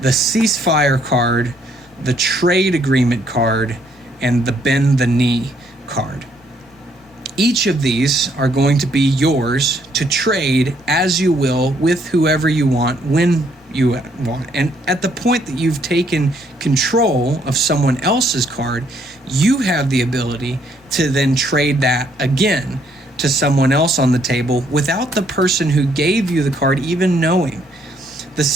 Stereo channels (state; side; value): normal; both; correlation 0.69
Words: the Ceasefire card, the Trade Agreement card, and the Bend the Knee card. Each of these are going to be yours to trade as you will with whoever you want, when you want. And at the point that you've taken control of someone else's card, you have the ability to then trade that again to someone else on the table without the person who gave you the card even knowing. The